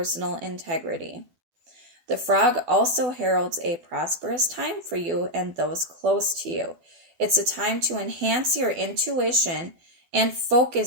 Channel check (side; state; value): left; late; 12 ms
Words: integrity. The frog also heralds a prosperous time for you and those close to you. It's a time to enhance your intuition and